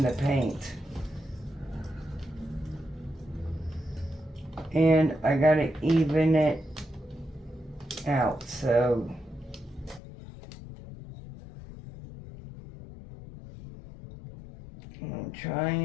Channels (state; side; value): drops out; right; at 10.0 s